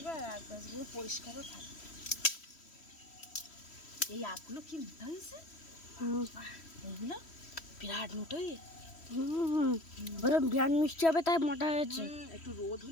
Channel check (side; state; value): right; late; 3.1 ms